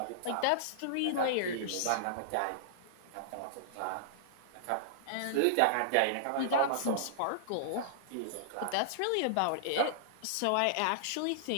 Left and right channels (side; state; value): both; different; correlation -0.02